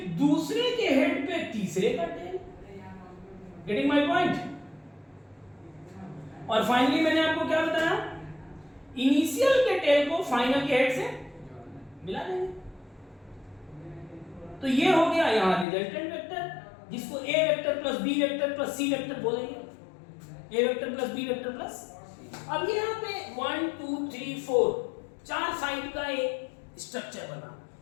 दूसरे के हेड पे तीसरे का टेल। Getting my point? और फाइनली मैंने आपको क्या बताया? इनिशियल के टेल को फाइनल के हेड से मिला देंगे। तो ये हो गया यहां रिजल्टेंट वेक्टर, जिसको A vector plus B vector plus C vector बोलेंगे। A vector plus B vector plus, अब यहाँ पे 1 2 3 4 चार साइड का एक स्ट्रक्चर बना,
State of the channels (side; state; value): right; drops out; at 15.7 s